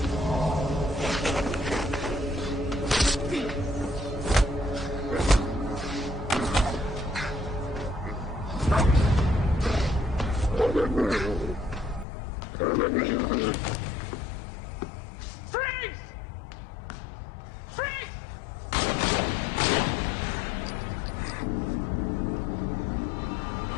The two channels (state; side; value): drops out; right; at 12.1 s